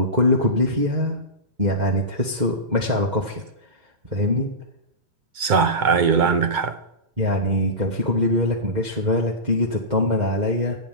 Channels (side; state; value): left; late; 2.2 ms